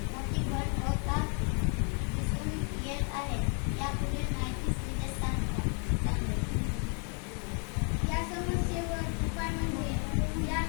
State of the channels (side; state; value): right; quieter; 38.7 dB